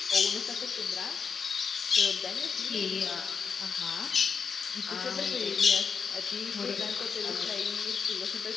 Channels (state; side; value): quieter; right; 5.9 dB